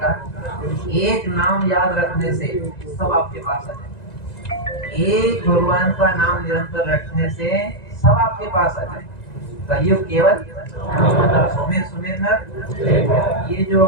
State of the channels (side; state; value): right; late; 1.9 ms